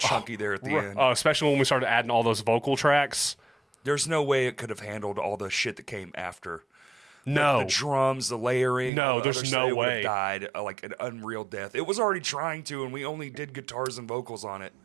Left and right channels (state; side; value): drops out; left; at 8.9 s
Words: there at the end. Especially when we started adding all those vocal tracks. There's no way it could have handled all the shit that came after. No. The drums, the layering. No, there's no way. It would have died like an unreal death. It was already trying to, and we only did guitars and vocals on it.